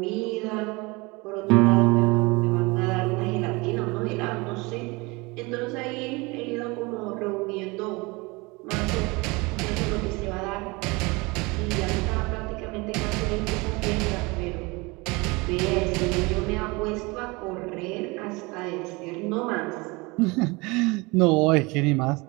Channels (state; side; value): quieter; left; 25.5 dB